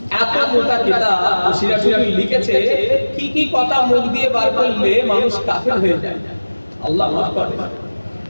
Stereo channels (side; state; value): both; inverted; correlation -1.00